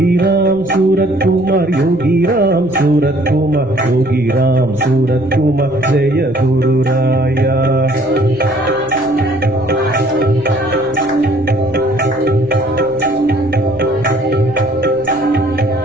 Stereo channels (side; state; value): left; noise; rumble, 22 dB below the sound